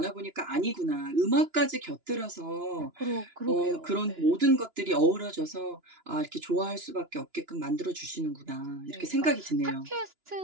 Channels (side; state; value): left; late; 2.9 ms